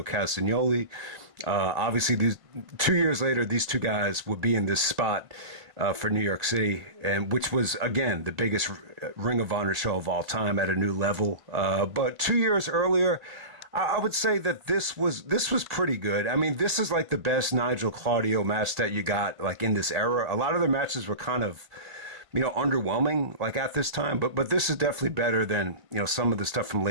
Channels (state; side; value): late; left; 1.5 ms